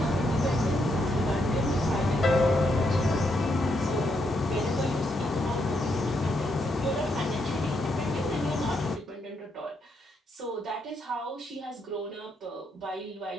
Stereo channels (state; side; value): normal; both; correlation 0.78